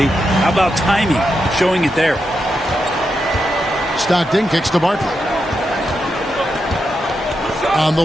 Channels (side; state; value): both; normal; correlation 0.85